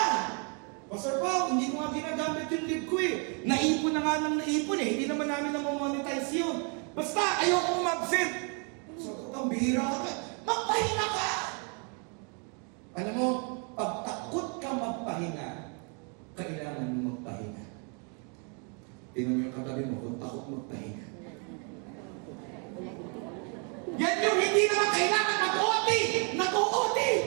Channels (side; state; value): left; quieter; 37.7 dB